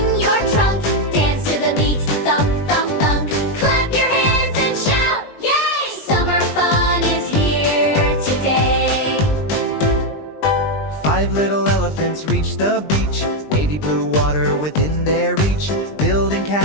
your trunk. Dance to the beat, thump, thump, thump. Clap your hands and shout, yay! Summer fun is here today. 5 little elephants reach the beach, wavy blue water within their reach, building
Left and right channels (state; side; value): late; right; 20 ms